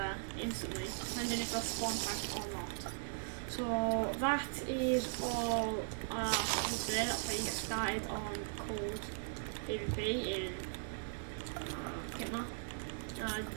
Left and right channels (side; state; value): left; silent; digital silence